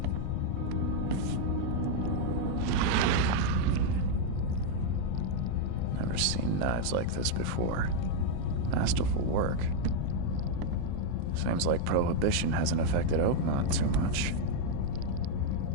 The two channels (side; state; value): both; different; correlation 0.00